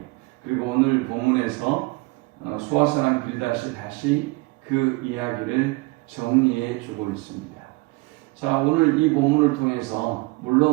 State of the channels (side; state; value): left; quieter; 24.2 dB